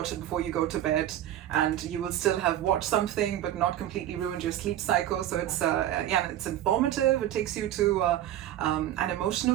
it before you go to bed, and you will still have watched something but not completely ruined your sleep cycle. So it's it's informative. It takes you to an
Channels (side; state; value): left; quieter; 12.3 dB